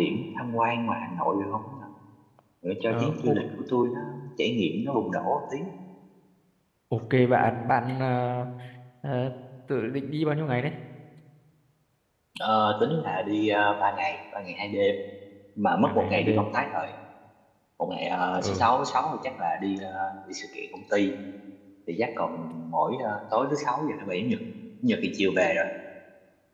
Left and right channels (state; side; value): identical; both; correlation 1.00